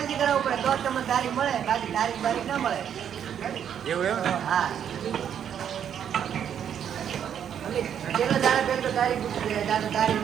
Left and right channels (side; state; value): left; quieter; 8.9 dB